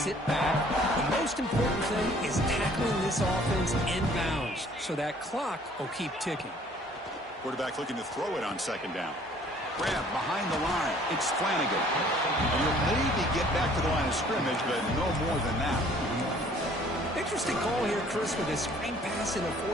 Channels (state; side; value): normal; both; correlation 0.56